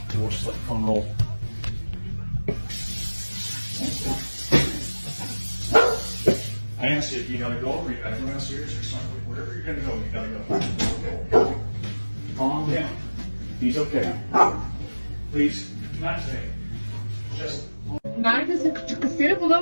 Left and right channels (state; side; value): inverted; both; correlation -1.00